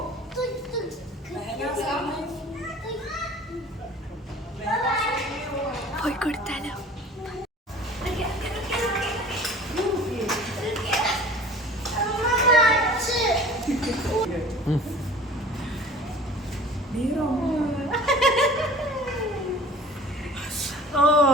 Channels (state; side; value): normal; both; correlation 0.45